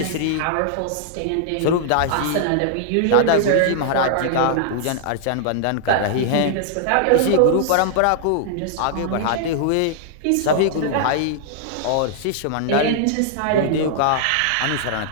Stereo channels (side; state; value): both; different; correlation -0.01